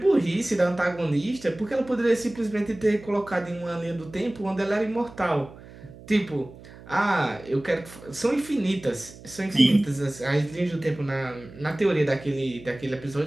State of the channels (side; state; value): right; noise; hum, 19 dB below the sound